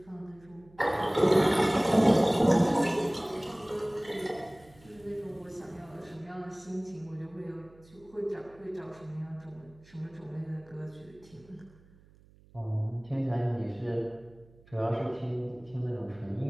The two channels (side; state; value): right; noise; hum, 26 dB below the sound